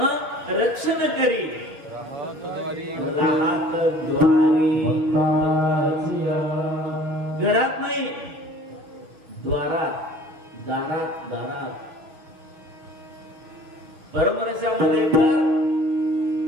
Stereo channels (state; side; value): late; left; 6.8 ms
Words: रक्षण करी राहत द्वारी। घरात नाही, द्वारात, दारात, दारात। परमरसामध्ये तर